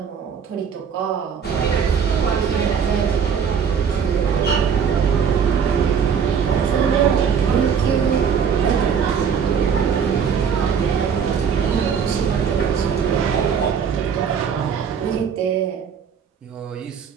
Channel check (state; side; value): quieter; left; 7.0 dB